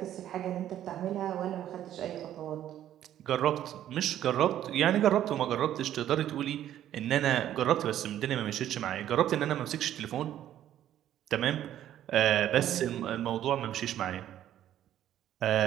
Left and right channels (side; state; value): left; quieter; 11.7 dB